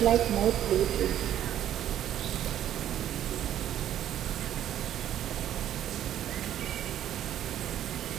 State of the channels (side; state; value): left; quieter; 11.3 dB